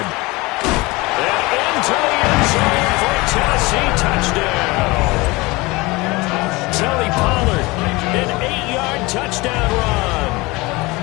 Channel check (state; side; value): quieter; right; 23.1 dB